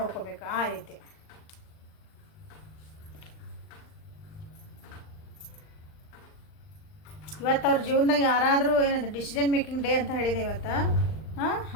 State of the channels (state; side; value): late; right; 39 ms